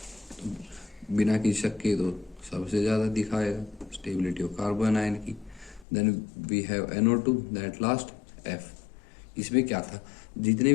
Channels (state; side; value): drops out; right; at 5.9 s